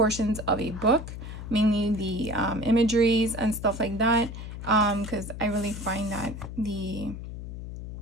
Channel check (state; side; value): noise; left; hum, 9 dB below the sound